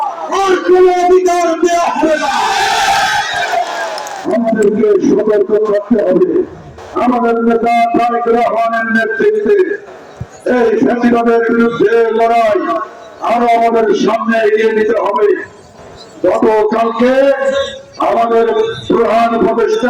আর কোন অধিকার দেওয়া হবে না। আমাদেরকে সতর্ক থাকতে হবে। আমাদের নেতা তারেক রহমানের নেতৃত্বে এই ফ্যাসিবাদের বিরুদ্ধে লড়াই আরো আমাদের সামনে এগিয়ে নিতে হবে। গতকালকে আমাদের প্রধান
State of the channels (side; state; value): both; identical; correlation 1.00